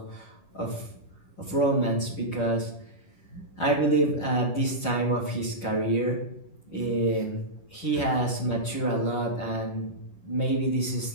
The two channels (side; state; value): right; late; 11 ms